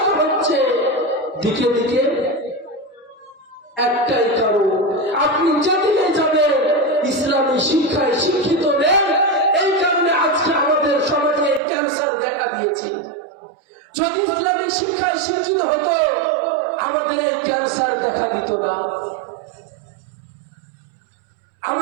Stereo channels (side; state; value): left; drops out; at 11.6 s